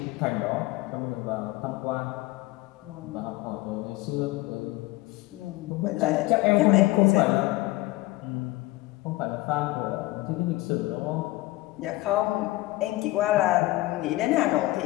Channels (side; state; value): right; quieter; 19.4 dB